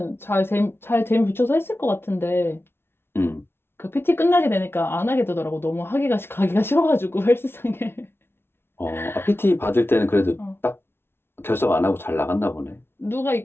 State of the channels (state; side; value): late; right; 0.11 ms